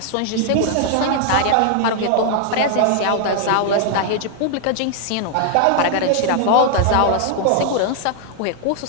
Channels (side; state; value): both; different; correlation 0.00